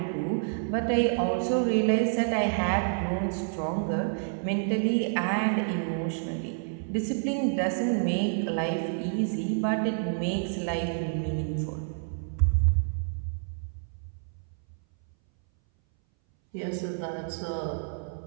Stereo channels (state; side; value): silent; left; 59 dB below the other